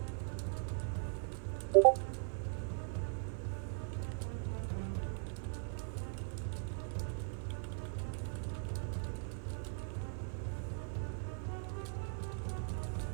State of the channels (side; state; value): left; silent; 51 dB below the other